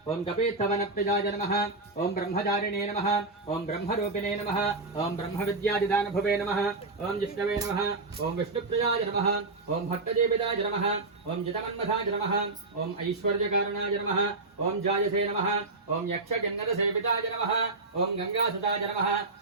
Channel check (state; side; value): quieter; left; 3.3 dB